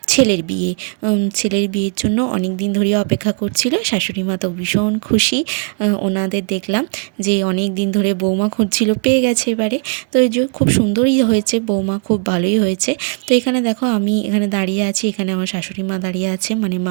ছেলের বিয়ে। ছেলের বিয়ের জন্য অনেক দিন ধরে অপেক্ষা করছিল। শাশুড়ি মা তো ভীষণ খুশি। ওনাদের দেখলাম যে অনেক দিন ধরে বৌমা খুঁজছিল, পেয়ে গেছে এবারে। তো এই যে খুব সুন্দরই হয়েছে, বৌমা খুব ভালোই হয়েছে। তো এখানে দেখো আমি এখানে দাঁড়িয়ে আছি, এখানে আমার শাশুড়ি মা দাঁড়িয়ে আছে, মানে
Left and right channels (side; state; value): left; quieter; 39.6 dB